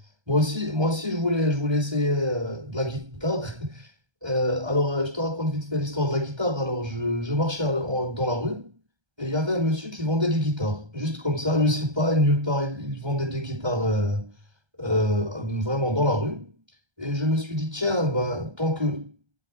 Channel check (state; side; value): late; left; 1.3 ms